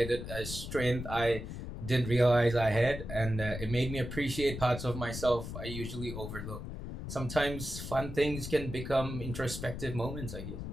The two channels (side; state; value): left; noise; rumble, 7 dB below the sound